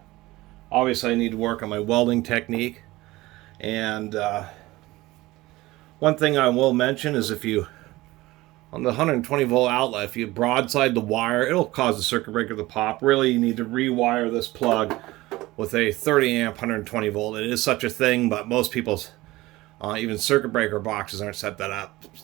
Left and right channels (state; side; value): quieter; left; 19.0 dB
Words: Obviously I need to work on my welding technique. And one thing I will mention is if you, on the 120 volt outlet, if you broadside the wire, it'll cause the circuit breaker to pop. Really, you need to rewire this plug with a 30 amp 120 volt. It is such a thing, but most people's even circuit breaker boxes aren't set that up. So